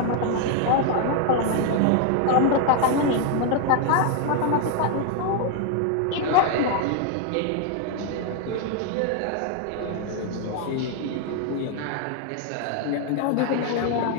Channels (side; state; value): both; different; correlation 0.01